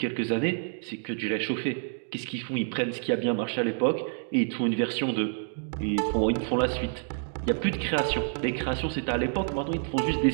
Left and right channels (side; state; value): left; silent; 59 dB below the other